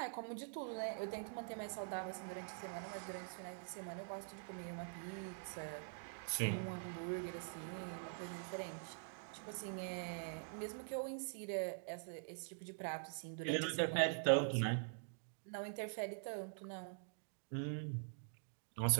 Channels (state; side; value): silent; left; digital silence